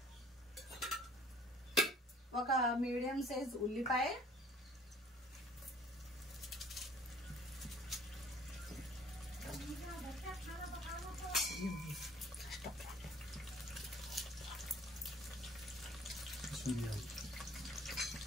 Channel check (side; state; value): both; normal; correlation 0.54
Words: ఒక మీడియం సైజ్ ఉల్లిపాయ,